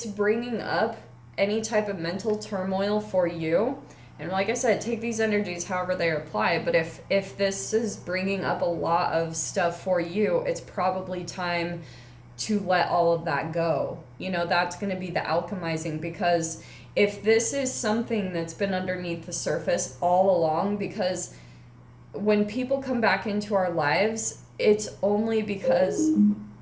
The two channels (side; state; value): both; identical; correlation 1.00